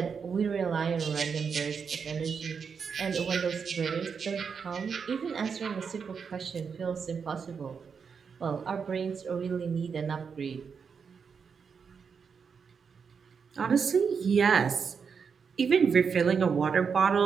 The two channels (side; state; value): left; quieter; 6.1 dB